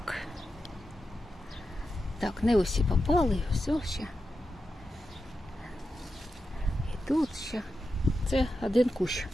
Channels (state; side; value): normal; both; correlation 0.89